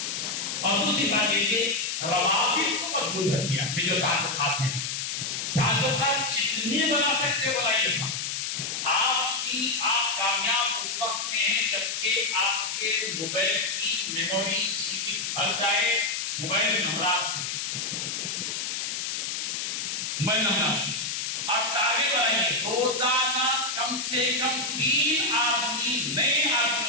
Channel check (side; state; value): left; noise; hiss, 3 dB below the sound